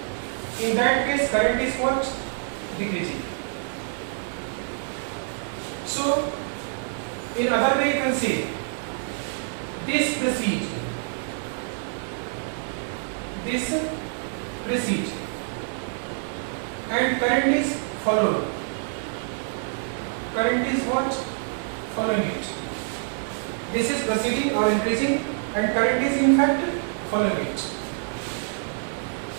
In that case, current is what? Decreasing. So in other way you can say this precedes, and current is followed. Current is what? Following it. This is proceeding or increasing, and current is in fact following it.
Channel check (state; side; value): silent; left; 59 dB below the other